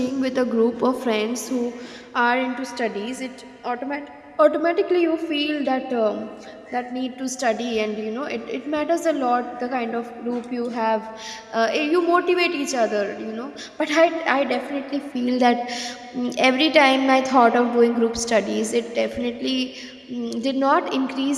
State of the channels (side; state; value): both; identical; correlation 1.00